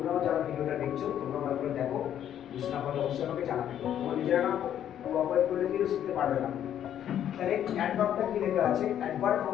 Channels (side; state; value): right; quieter; 10.3 dB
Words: যারা ভিডিওটা দেখছো তোমরা ভালো করে দেখো, বুঝতে না পারলে অবশ্যই আমাকে জানাবে। তোমরা নিজেরা না কোঅপারেট করলে কিন্তু শিখতে পারবে না। তাহলে অ্যাডভার্বটা কি লেখা আছে? অ্যাডভার্ব